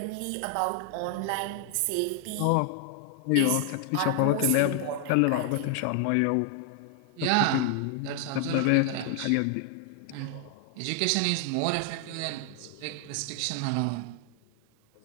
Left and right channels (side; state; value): both; different; correlation 0.00